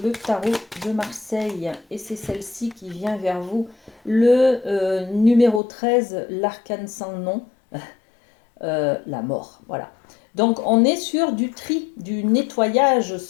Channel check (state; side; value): drops out; right; at 5.6 s